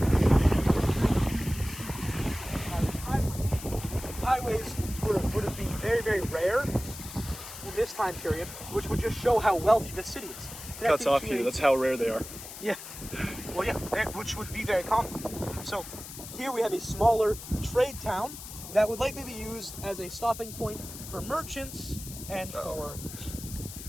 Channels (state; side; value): noise; left; hiss, 12 dB below the sound